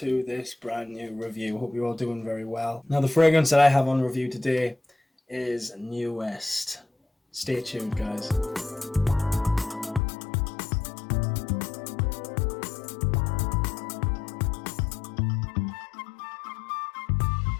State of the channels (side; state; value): right; drops out; at 10.0 s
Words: this brand new review. Hope you're all doing very well. Now the fragrance that I have on review today is New West. Stay tuned guys. The